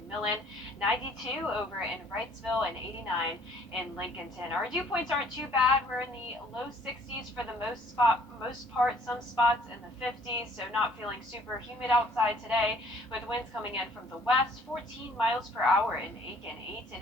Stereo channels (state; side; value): normal; both; correlation 0.59